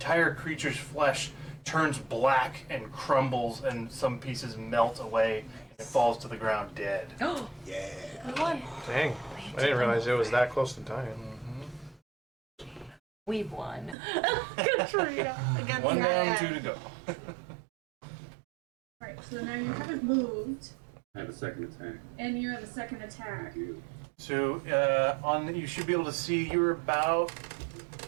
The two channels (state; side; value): drops out; left; at 14.0 s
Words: creature's flesh turns black and crumbles, and some pieces melt away, and it falls to the ground dead. Oh, Yeah. Good one. Dang. I didn't realize it was that close to dying. we've won. Katrina. Against One that down, guy. 2 to go. Right, so now you haven't moved, I have a second attack. and you have a second attack. So you should be able to see you're about